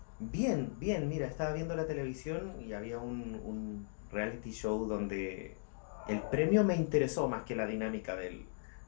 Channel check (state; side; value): silent; right; digital silence